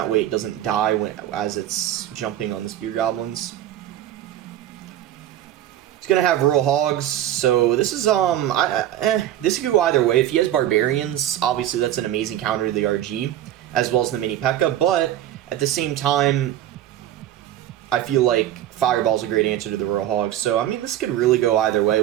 way it doesn't die as it's jumping on the Spear Goblins. It's gonna have Royal Hogs, so this is this could go either way. If he has Barbarians, obviously that's an amazing counter to the RG, as well as the Mini P.E.K.K.A. But at the same time, I feel like Fireball's a great answer to the Royal Hogs. So I mean, this could really go either way.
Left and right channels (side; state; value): left; quieter; 12.4 dB